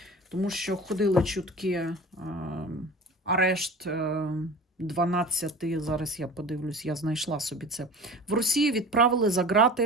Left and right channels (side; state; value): both; normal; correlation 0.38